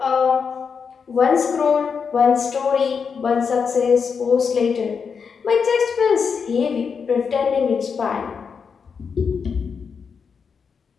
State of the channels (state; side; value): quieter; right; 6.0 dB